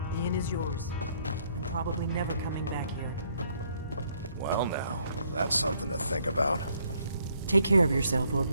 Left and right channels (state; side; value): inverted; both; correlation -0.68